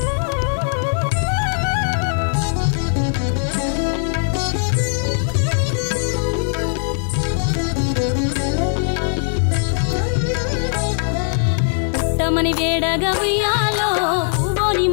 పుట్టమని వేడగా ఉయ్యాలో పూవోని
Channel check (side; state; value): right; silent; 66 dB below the other